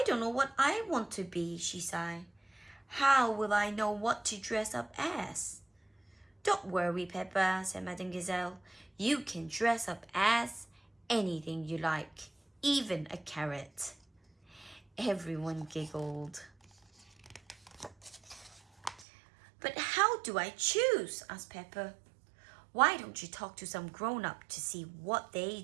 don't know what I want to be, she sighed. How will I know what to dress up as? Don't worry, Peppa, said Madame Gazelle. You can dress up as anything you like, even a carrot. Everyone giggled. But how do I choose? Asked Peppa. Why don't you talk to some grown-up to see what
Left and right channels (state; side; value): drops out; left; at 19.1 s